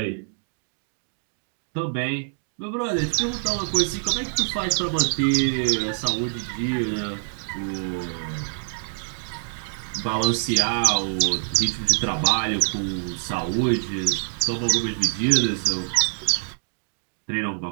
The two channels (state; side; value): silent; left; digital silence